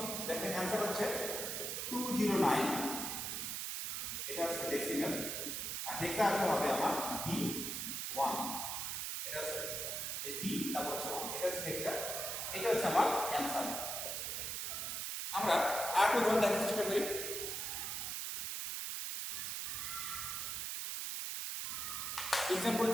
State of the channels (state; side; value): noise; right; hiss, 3 dB below the sound